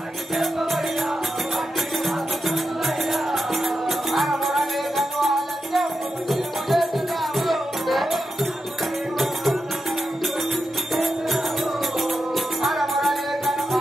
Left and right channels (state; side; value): normal; both; correlation 0.88